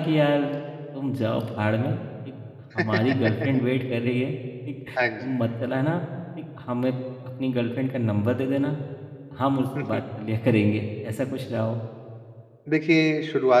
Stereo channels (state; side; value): identical; both; correlation 1.00